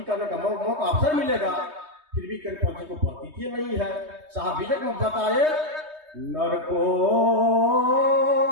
करने का मौका अवसर मिलेगा। फिर भी करपंथी को प्रतीति नहीं है। साहब विजय में बताए, नर को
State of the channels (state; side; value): late; left; 3.2 ms